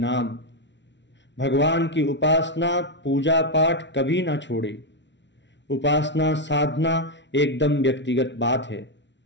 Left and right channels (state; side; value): late; right; 0.52 ms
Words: भगवान की उपासना पूजा पाठ कभी ना छोड़े। उपासना साधना एकदम व्यक्तिगत बात है।